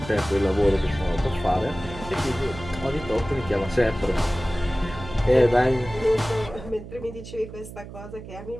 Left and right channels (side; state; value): right; noise; hum, 13 dB below the sound